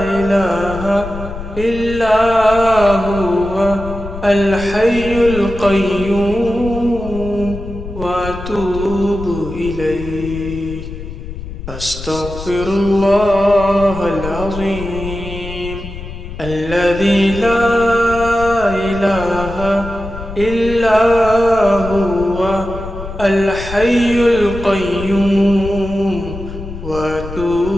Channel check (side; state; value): left; noise; rumble, 10 dB below the sound